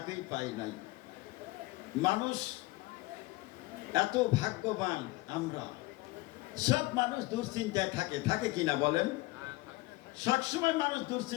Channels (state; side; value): quieter; right; 20.8 dB